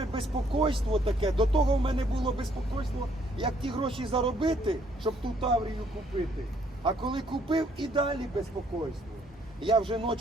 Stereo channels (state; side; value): normal; both; correlation 0.66